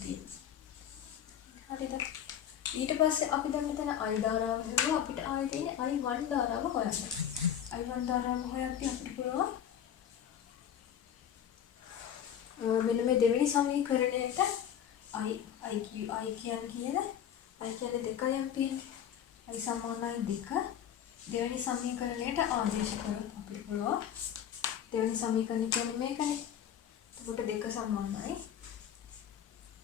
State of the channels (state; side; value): quieter; right; 9.4 dB